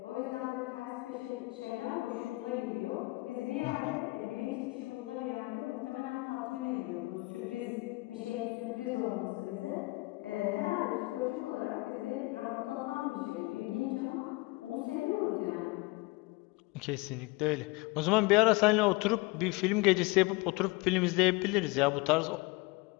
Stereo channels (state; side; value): quieter; right; 23.8 dB